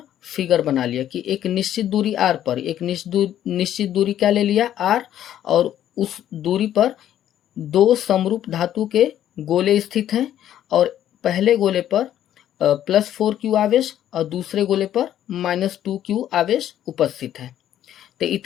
फिगर बना लिया कि एक निश्चित दूरी r पर एक निश्चित दूरी क्या ले लिया r, और उस दूरी पर दो समरूप धातु के गोले स्थित हैं और पहले गोले पर +4q आवेश और दूसरे गोले पर -2q आवेश उपस्थित है। तो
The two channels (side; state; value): right; quieter; 11.3 dB